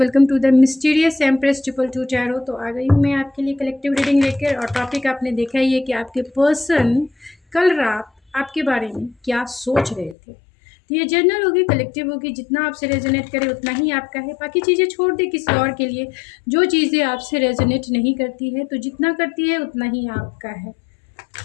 to the mysterious empress triple two tarot. तो आ गई हूँ मैं आपके लिए कलेक्टिव रीडिंग लेकर। और टॉपिक आपने देखा ही है कि आपके पर्सन कल रात आपके बारे में क्या सोच रहे थे। तो ये जनरल होगी, कलेक्टिव होगी, जितना आपसे रेजोनेट करे उतना ही आपका है। बाकी चीज़ें छोड़ दे किसी और के लिए। जो चीज़ें आपसे रेजोनेट नहीं करती है, तो जितना करती है उतना ही आपका है।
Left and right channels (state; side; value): drops out; right; at 10.2 s